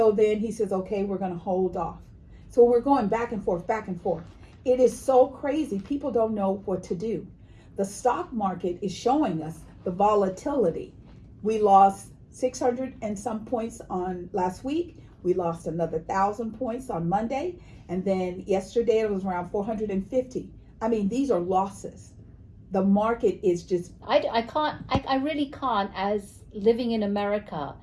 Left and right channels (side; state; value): both; identical; correlation 1.00